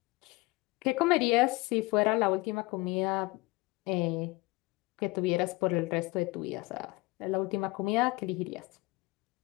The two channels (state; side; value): quieter; right; 22.5 dB